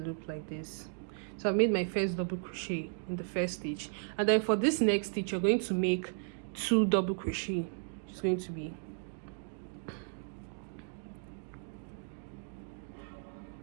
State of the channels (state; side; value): silent; left; digital silence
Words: like this. So I made my first double crochet in the first stitch, and then for this next stitch you're going to make 2 double crochet. It's going to be